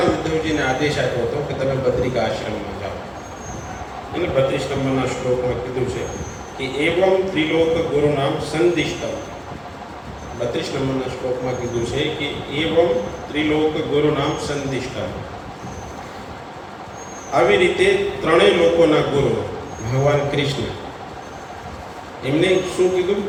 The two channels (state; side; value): identical; both; correlation 1.00